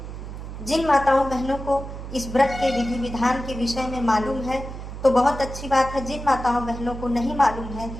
जिन माताओं बहनों को इस व्रत के विधि विधान के विषय में मालूम है तो बहुत अच्छी बात है। जिन माताओं बहनों को नहीं मालूम है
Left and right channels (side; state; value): right; noise; hum, 10 dB below the sound